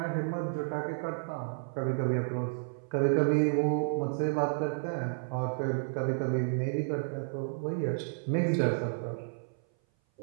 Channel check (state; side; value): silent; left; 56 dB below the other